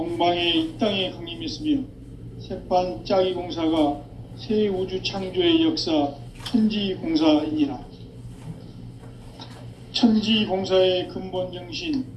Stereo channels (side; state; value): both; identical; correlation 1.00